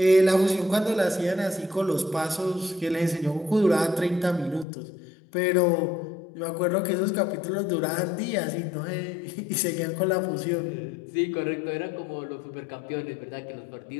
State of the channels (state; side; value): drops out; right; at 4.7 s